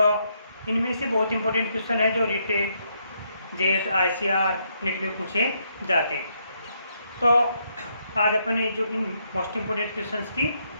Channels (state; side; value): inverted; both; correlation -0.75